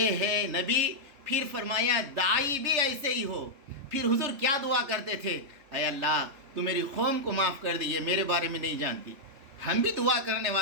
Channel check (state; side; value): late; left; 3.4 ms